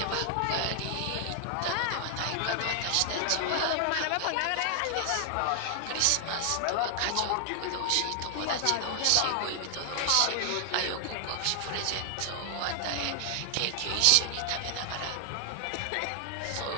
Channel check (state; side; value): different; both; correlation 0.00